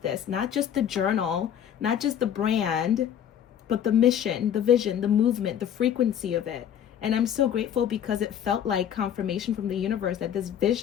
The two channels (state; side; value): quieter; right; 9.5 dB